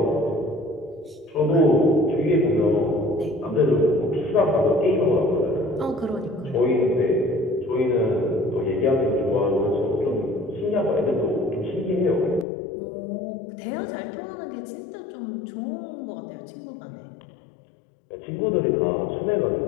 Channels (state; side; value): drops out; right; at 12.5 s